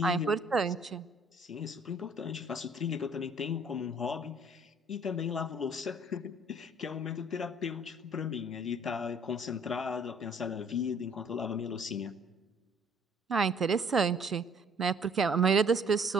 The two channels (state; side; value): normal; both; correlation 0.58